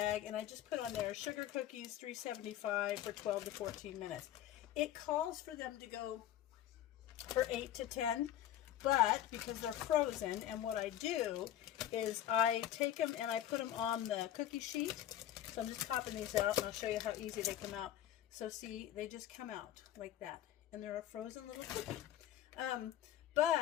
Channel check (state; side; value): quieter; right; 12.2 dB